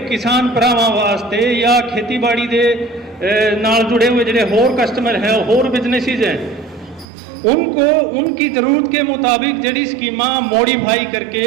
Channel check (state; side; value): drops out; left; at 7.1 s